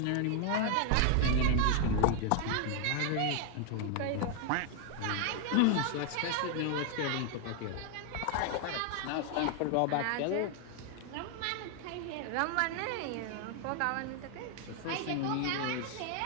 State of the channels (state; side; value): different; both; correlation 0.00